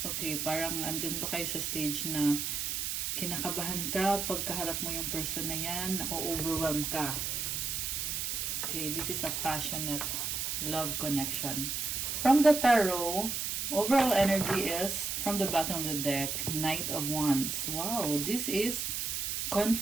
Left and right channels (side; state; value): right; noise; hiss, 1 dB below the sound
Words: Okay, parang andun ba kayo sa stage na kinakabahan ka pagkaharap mo yung person na yan, na-overwhelm ka. Okay, this is a passionate love connection. From the tarot, overall energy is, from the bottom of the deck, Knight of Wands. Wow, this is